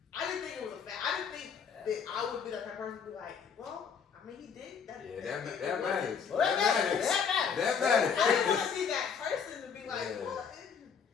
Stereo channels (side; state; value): right; quieter; 6.7 dB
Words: didn't think it was a fact. I didn't think that I would be the type of person to be like, well, I mean, he did that. Yeah, that matters. Well, That matters. that That I didn't matters. want to be that person to be like, Yeah. what?